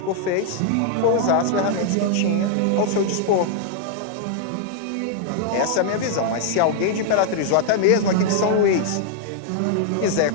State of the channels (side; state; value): both; different; correlation 0.00